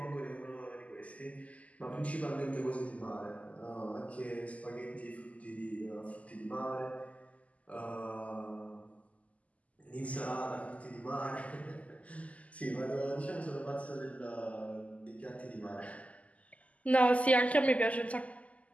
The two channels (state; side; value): late; right; 0.070 ms